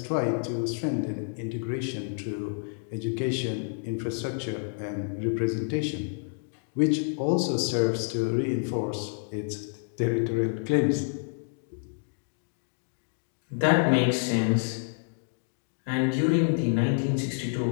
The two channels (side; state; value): right; silent; digital silence